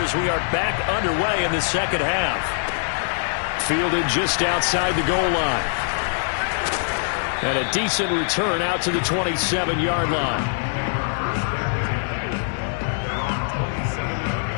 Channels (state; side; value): silent; right; digital silence